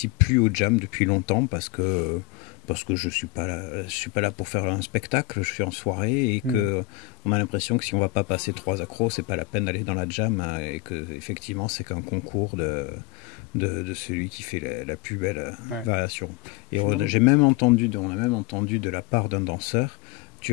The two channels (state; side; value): quieter; right; 19.8 dB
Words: plus au jam depuis longtemps parce que je suis pas là pour faire un spectacle, je suis en soirée et que on a l'impression que si on va pas passer 3 accros, c'est pas la peine d'aller dans la jam et que effectivement c'est qu'un concours de celui qui fait la plus belle variation. Et on a même entendu de la part d'un danseur,